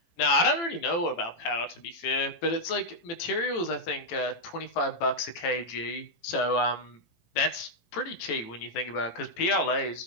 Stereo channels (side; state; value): right; late; 18 ms